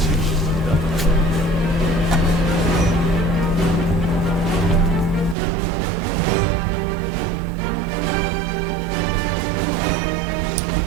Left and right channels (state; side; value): drops out; left; at 5.4 s